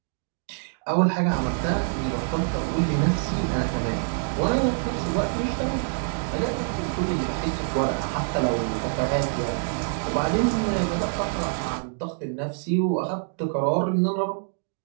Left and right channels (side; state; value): left; silent; 60 dB below the other